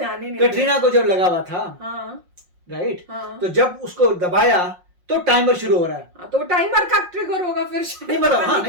ही नहीं। कटरीना को जब लगा हुआ था, राइट, तो जब उसको दबाया तो टाइमर शुरू हो रहा है, तो टाइमर का ट्रिगर होगा फिर नहीं मतलब हाँ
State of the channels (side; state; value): left; late; 5.6 ms